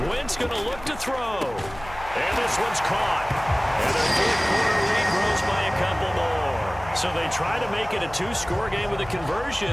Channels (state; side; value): noise; left; hum, 17 dB below the sound